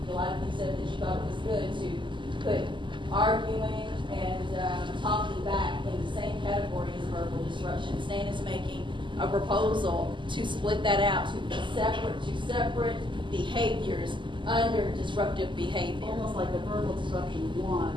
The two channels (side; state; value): left; late; 0.24 ms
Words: thought it was good to put arguing and talking back in the same category as verbal disruption. Stan is making a proposal to split that out to separate behaviors under disruptive behavior. Almost like a verbal disruption